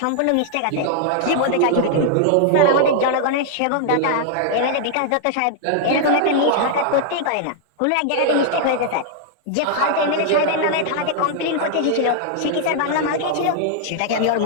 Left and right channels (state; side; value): different; both; correlation -0.01